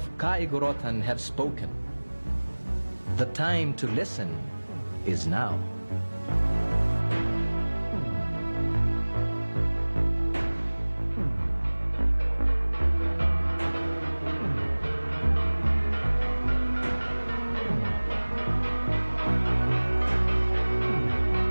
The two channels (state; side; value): inverted; both; correlation -1.00